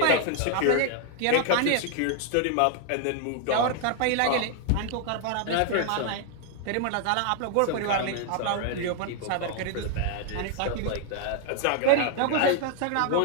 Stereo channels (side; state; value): both; different; correlation 0.00